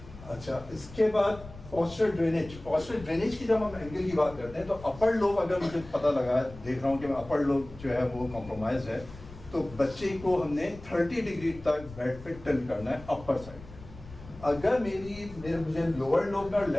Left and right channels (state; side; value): noise; left; rumble, 17 dB below the sound